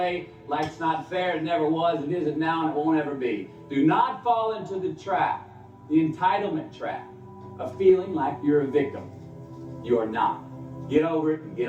Life's not fair. It never was. It isn't now, and it won't ever be. Do not fall into the trap, the entitlement trap, of feeling like you're a victim. You are not. Get over it and get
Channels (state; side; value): identical; both; correlation 1.00